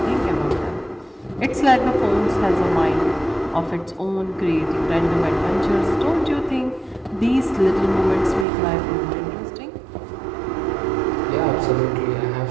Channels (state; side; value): drops out; left; at 8.5 s